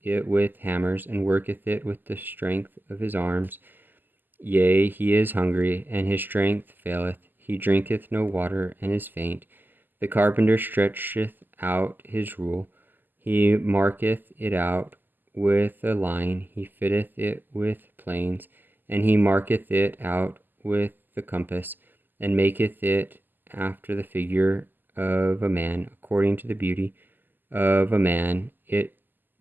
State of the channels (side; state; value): left; late; 0.090 ms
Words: it with hammers, and worketh it with the strength of his arms. Yea, he is hungry, and his strength faileth. He drinketh no water, and is faint. The carpenter stretcheth out his rule. He marketh it out with a line. He fitteth it with planes, and he marketh it out with the compass, and maketh it after the figure of a man, according to the beauty of a man, that